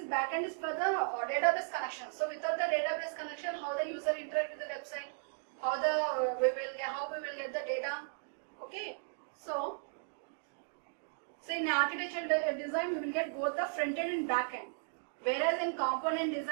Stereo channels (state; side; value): silent; left; digital silence